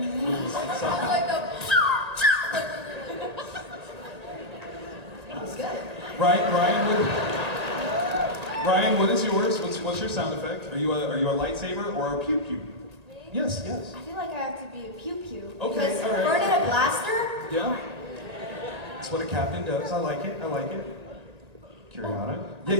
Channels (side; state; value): left; late; 1.8 ms